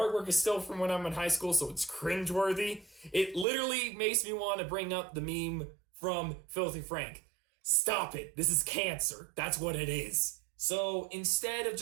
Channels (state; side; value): drops out; left; at 3.5 s